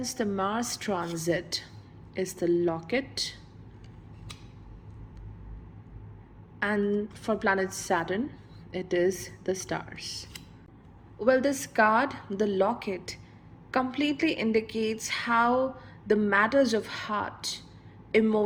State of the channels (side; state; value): both; identical; correlation 1.00